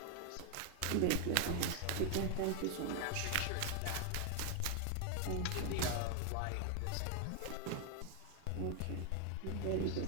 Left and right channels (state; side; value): different; both; correlation 0.00